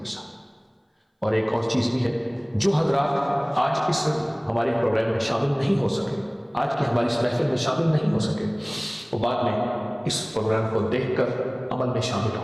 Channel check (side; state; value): both; identical; correlation 1.00